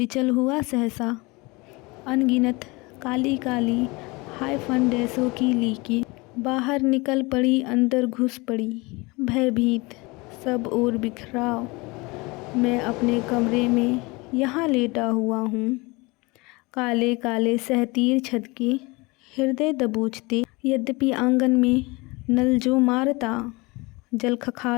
हुआ सहसा। अनगिनत काली काली हाय फंडेसों की लीकी बाहर निकल पड़ी, अंदर घुस पड़ी भयभीत सब ओर बिखराव। मैं अपने कमरे में यहाँ लेटा हुआ हूँ, काले काले सहतीर छत के हृदय दबोचते। यद्यपि आंगन में नल जो मारता जल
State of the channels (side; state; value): right; quieter; 25.1 dB